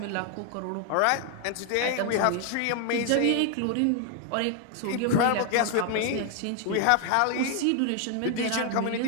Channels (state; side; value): different; both; correlation 0.00